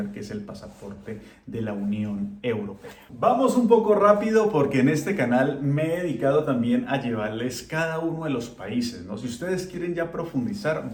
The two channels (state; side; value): identical; both; correlation 1.00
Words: que es el pasaporte de la Unión Europea. Vamos un poco rápido porque en este canal me he dedicado también a llevarles cada uno de los países, ¿no? Si ustedes quieren ya